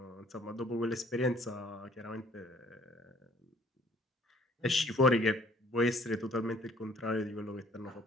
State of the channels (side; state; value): both; normal; correlation 0.58